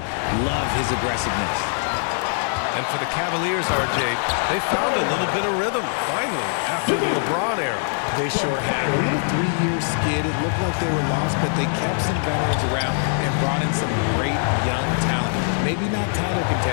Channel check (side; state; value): right; silent; 58 dB below the other